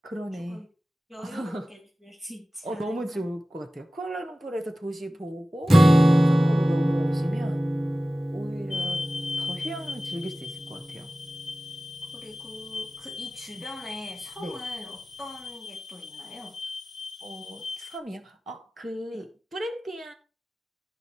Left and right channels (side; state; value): both; normal; correlation 0.96